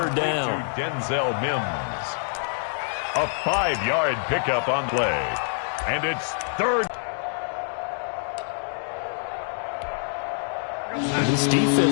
down. Denzel Mims. A 5-yard pickup on play. And it's 3rd. This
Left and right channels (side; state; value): right; silent; 61 dB below the other